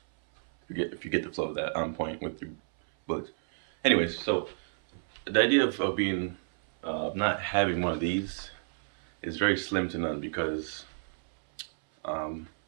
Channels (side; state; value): left; silent; 58 dB below the other